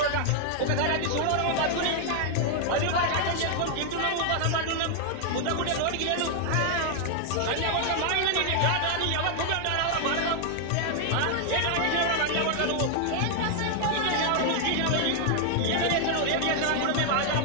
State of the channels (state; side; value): different; both; correlation 0.00